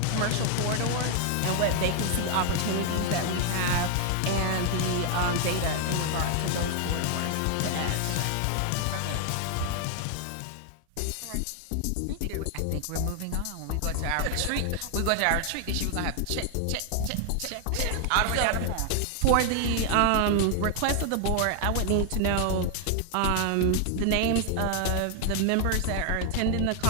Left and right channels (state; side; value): different; both; correlation 0.00